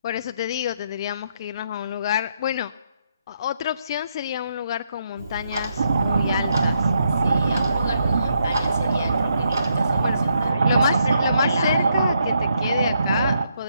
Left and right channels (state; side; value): inverted; both; correlation -0.77